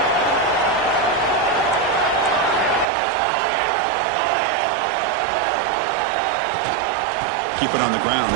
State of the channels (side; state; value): left; drops out; at 2.9 s